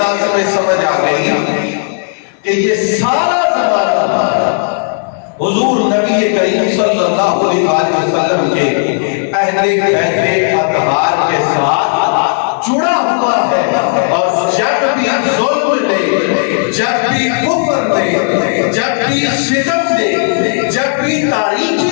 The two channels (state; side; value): silent; right; digital silence